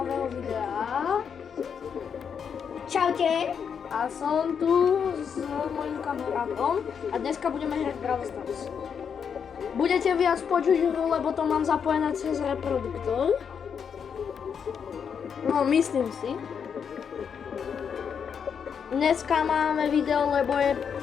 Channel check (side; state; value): right; quieter; 7.1 dB